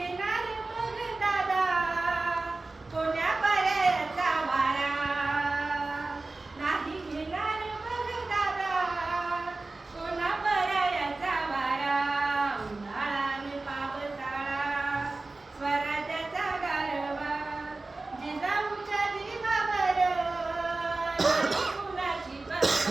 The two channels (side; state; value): left; quieter; 3.3 dB